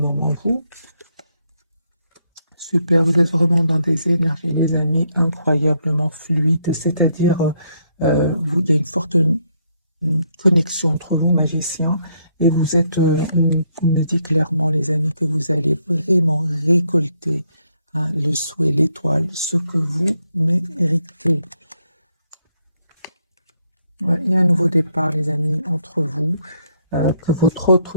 Vous, super, vous êtes vraiment dans des énergies, les amis, incroyablement fluides. C'est-à-dire, il y a une forte connexion entre vous, magiciens, et vous êtes, on me dit clairement, les amis, que vous allez vraiment récolter hein, le souhait, l'étoile, ce que vous méritez. Ouais, il y a un nouveau départ, les amis, entre vous, que votre autre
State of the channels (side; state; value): both; inverted; correlation -0.74